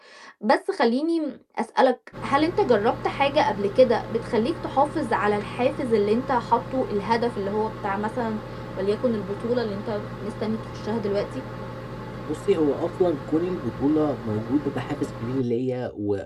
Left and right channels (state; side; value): identical; both; correlation 1.00